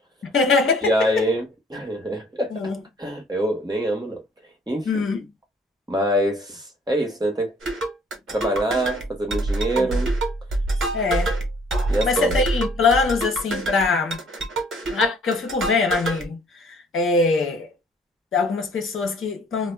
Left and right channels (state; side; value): normal; both; correlation 0.58